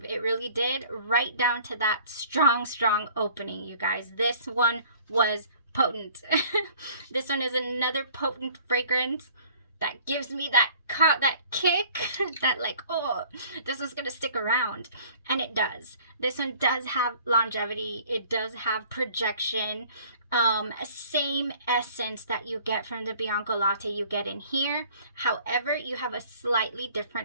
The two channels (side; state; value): both; inverted; correlation -0.52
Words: It really did, right down to that strong opening, you guys. This one was potent. This one is another potent fragrance that gives me that kick, that like, oh, this is gonna stick around. And it does. This one does have longevity. It does have projection. Same essence that you get from the Bianco Latte you get in here. However, you have a slightly